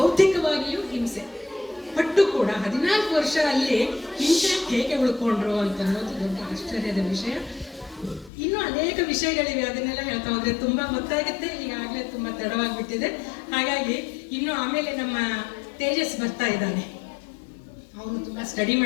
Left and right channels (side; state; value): right; drops out; at 8.3 s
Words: ಹಿಂಸೆ ಪಟ್ಟು ಕೂಡ 14 ವರ್ಷ ಅಲ್ಲಿ ಹಿಂಸೆ ಹೇಗೆ ಉಳ್ಕೊಂಡ್ರು ಅಂತ ಅನ್ನೋದು ದೊಡ್ಡ ಆಶ್ಚರ್ಯದ ವಿಷಯ. ಇನ್ನೂ ಅನೇಕ ವಿಷಯಗಳಿವೆ, ಅದನ್ನೆಲ್ಲ ಹೇಳ್ತಾ ಹೋದ್ರೆ ತುಂಬಾ ಗೊತ್ತಾಗುತ್ತೆ. ಈಗಾಗಲೇ ತುಂಬಾ ತಡವಾಗಿಬಿಟ್ಟಿದೆ. ಹಾಗಾಗಿ ಇನ್ನು ಆಮೇಲೆ ನಮ್ಮ ತೇಜಸ್ ಬರ್ತಾ ಇದ್ದಾನೆ, ಅವನು ತುಂಬಾ ಸ್ಟಡಿ